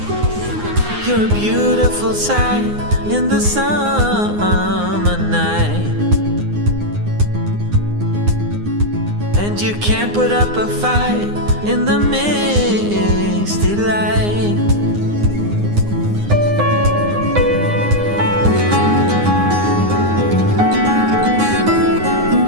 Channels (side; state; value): left; late; 9.7 ms